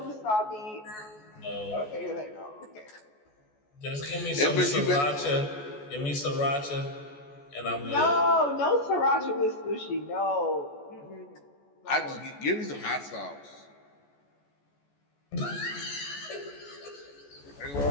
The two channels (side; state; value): right; late; 14 ms